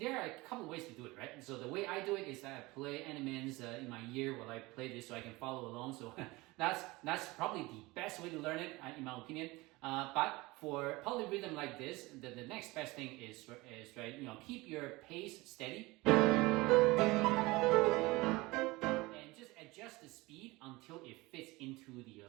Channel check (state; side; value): quieter; left; 21.9 dB